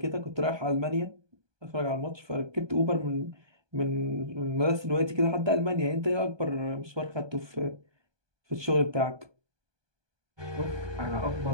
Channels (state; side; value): late; left; 1.2 ms